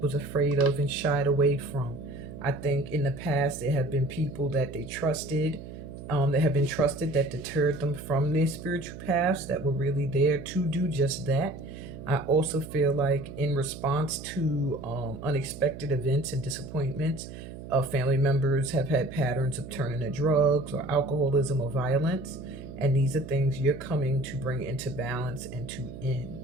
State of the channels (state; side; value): noise; right; hum, 12 dB below the sound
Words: afraid of and shied away from. I think in the past there have been people that they trusted, that have been trusted, that deterred them from their spiritual paths, that were really there to do just that. I also feel like in response to unexpected events and disappointments, family members have had patterns of turning to drugs or alcoholism or violence. And these are things you're coming to bring into balance and to